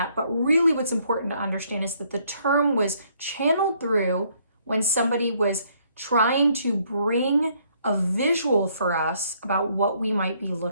But really what's important to understand is that the term was channeled through when somebody was trying to bring a visual for us about what we might be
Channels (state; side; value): inverted; both; correlation -0.67